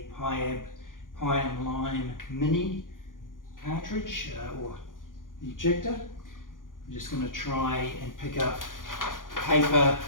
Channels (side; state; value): right; late; 0.89 ms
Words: Piab Pie and Lime mini cartridge or ejector. I'm just going to try and pick up paper